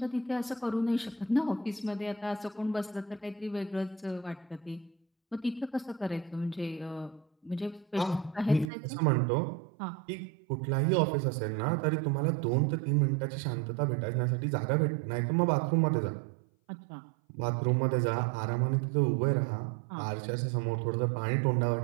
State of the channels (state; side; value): drops out; left; at 8.7 s